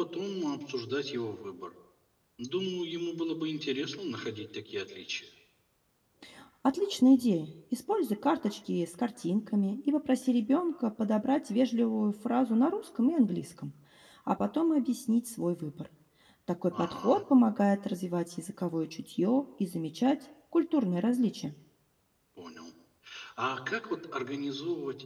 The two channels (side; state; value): both; identical; correlation 1.00